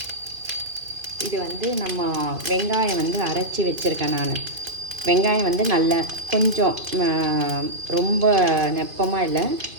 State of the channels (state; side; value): late; left; 2.5 ms